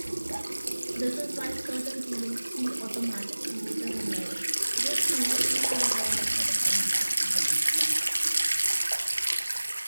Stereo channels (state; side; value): inverted; both; correlation -1.00